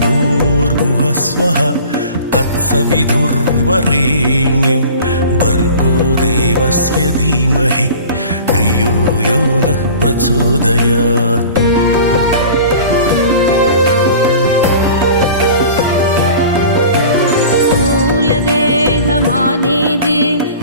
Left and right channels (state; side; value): inverted; both; correlation -0.42